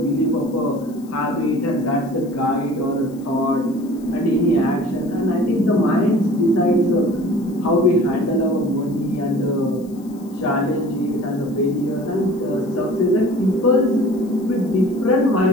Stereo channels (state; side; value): noise; left; hiss, 27 dB below the sound